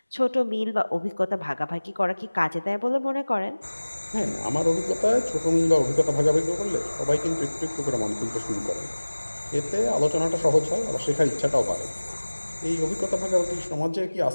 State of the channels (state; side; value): inverted; both; correlation -1.00